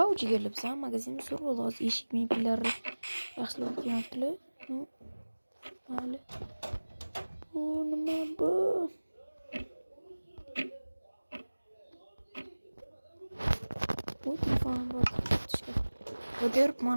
jigarli bizam magazinimiz zo'r bo'ldi. Hozir eshik mebellari yaxshilab qo'yaptilar. Mayli. Bu nima bu? Bu telefon bor. Qo'yib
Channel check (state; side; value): inverted; both; correlation -1.00